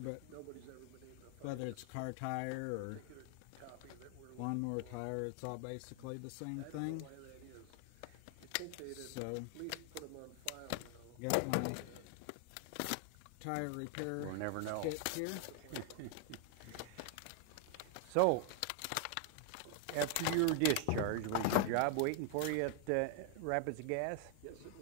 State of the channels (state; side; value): different; both; correlation 0.00